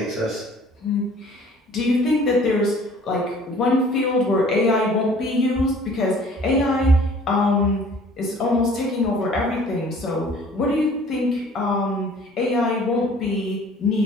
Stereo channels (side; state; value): both; normal; correlation 0.51